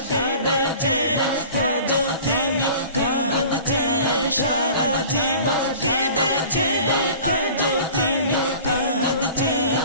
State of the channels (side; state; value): both; inverted; correlation -0.43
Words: কেঁদেছে আজও তিনি কাঁদছে সারা জীবন কেঁদেছে আজও তিনি কাঁদছে